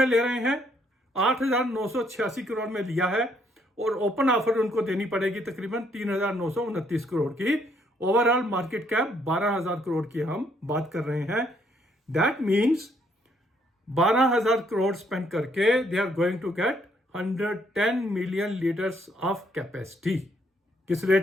ले रहे हैं? 8,986 करोड़ में लिया है और ओपन ऑफर उनको देनी पड़ेगी तकरीबन 3,929 करोड़ की। ओवरऑल मार्केट कैप 12,000 करोड़ की हम बात कर रहे हैं। दैट मीन्स 12,000 करोड़ स्पेंड करके they are going to get 110 million litres of capacity. किस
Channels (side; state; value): both; normal; correlation 0.69